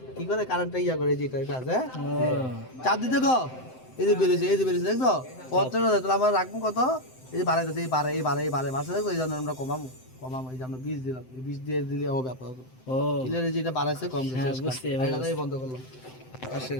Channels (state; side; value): late; right; 7.8 ms